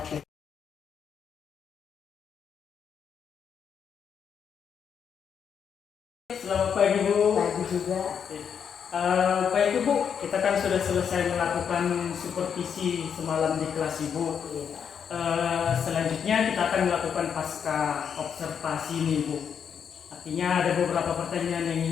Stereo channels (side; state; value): right; quieter; 7.5 dB